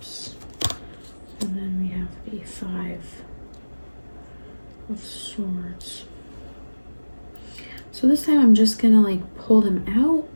and then we have the Five of Swords. So this time I'm just gonna like pull them out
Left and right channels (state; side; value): inverted; both; correlation -1.00